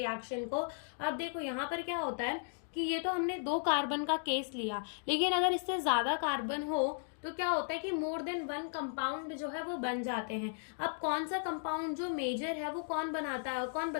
को। अब देखो यहाँ पर क्या होता है कि ये तो हमने 2 कार्बन का केस लिया, लेकिन अगर इससे ज्यादा कार्बन हो तो क्या होता है कि मोर देन 1 कंपाउंड जो है वो बन जाते हैं। अब कौन सा कंपाउंड जो मेजर है वो कौन बताता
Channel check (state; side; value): silent; right; digital silence